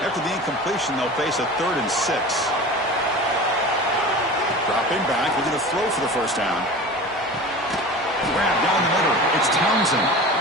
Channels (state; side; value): normal; both; correlation 0.35